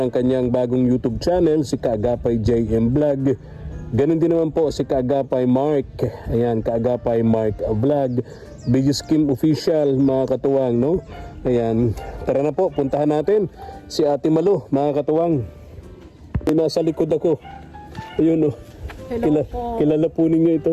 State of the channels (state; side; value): identical; both; correlation 1.00